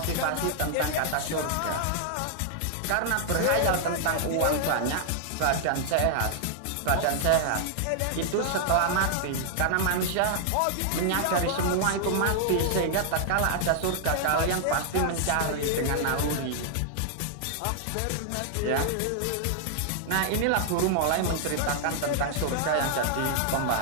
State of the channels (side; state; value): both; different; correlation -0.01